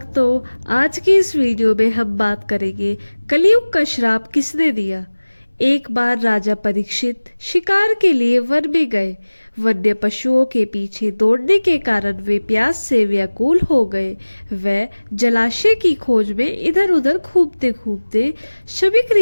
आज की इस वीडियो में हम बात करेंगे कलयुग का श्राप किसने दिया। एक बार राजा परीक्षित शिकार के लिए वन में गए। वन्य पशुओं के पीछे दौड़ने के कारण वे प्यास से व्याकुल हो गए। वे जलाशय की खोज में इधर उधर घूमते घूमते शमीक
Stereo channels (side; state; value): both; inverted; correlation -1.00